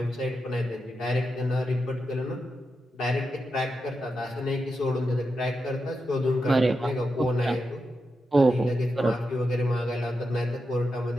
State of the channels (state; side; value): normal; both; correlation 0.88